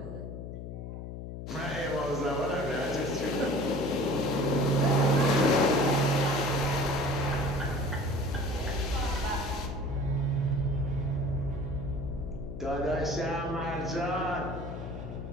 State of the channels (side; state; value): left; noise; hum, 8 dB below the sound